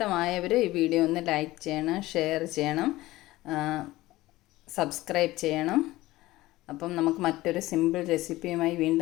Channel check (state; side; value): quieter; right; 17.9 dB